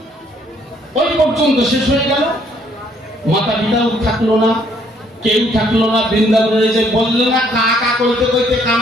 ওই পর্যন্ত শেষ হয়ে গেল, মাতা পিতাও থাকলো না, কেউ থাকলো না। বৃন্দাবনে যে বললো না কাকা কইতে কইতে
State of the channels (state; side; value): normal; both; correlation 0.65